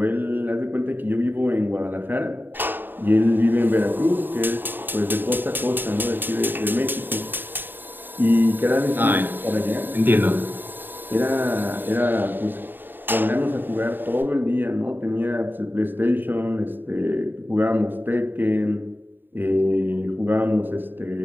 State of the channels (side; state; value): left; late; 0.093 ms